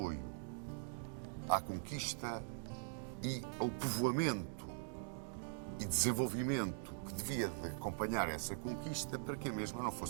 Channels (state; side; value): silent; left; digital silence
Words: à conquista e ao povoamento e desenvolvimento que devia de acompanhar essa conquista para que a mesma não